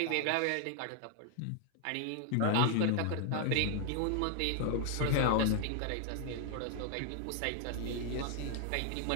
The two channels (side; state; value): both; different; correlation 0.00